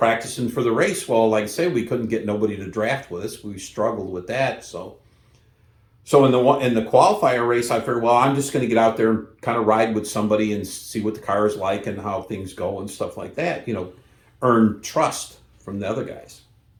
for the race. Well, like I say, we couldn't get nobody to draft with us. We struggled with that. So in the qualifier race, I figured, well, I'm just going to get out there and kind of ride with somebody and see what the car is like and how things go and stuff like that. Earn trust from the other guys.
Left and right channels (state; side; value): identical; both; correlation 1.00